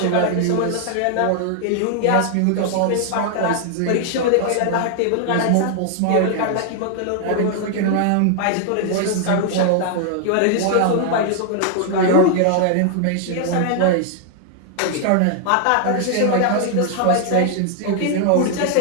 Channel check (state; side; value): different; both; correlation 0.00